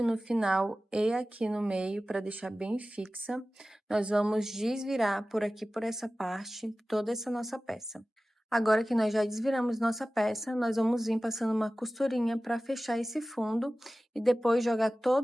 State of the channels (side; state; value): both; normal; correlation 0.96